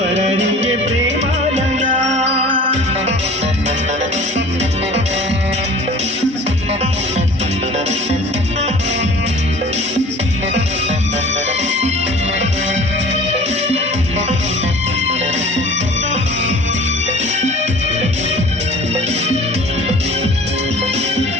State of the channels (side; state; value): both; normal; correlation 0.44